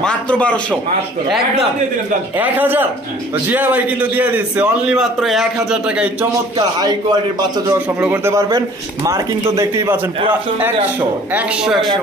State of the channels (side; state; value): both; normal; correlation 0.51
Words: মাত্র 1200, একদম 1000। তো জিয়া ভাই কিন্তু দিয়ে দিচ্ছে অনলি মাত্র 1000 টাকায় চমৎকার হাই কোয়ালিটির বাচ্চা জোড়া সংগ্রহ করতে পারবেন। মার্কিং তো দেখতেই পাচ্ছেন পুরো 100